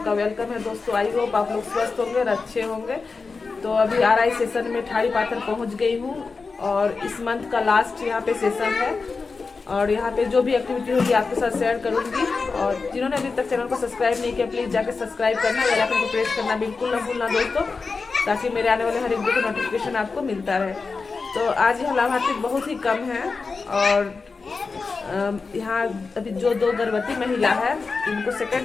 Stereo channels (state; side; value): quieter; right; 4.4 dB